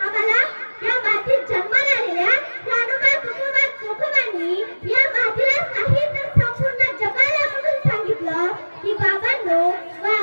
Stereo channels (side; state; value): both; inverted; correlation -1.00